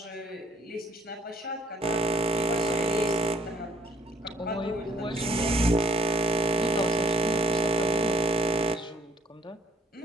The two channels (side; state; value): both; normal; correlation 0.61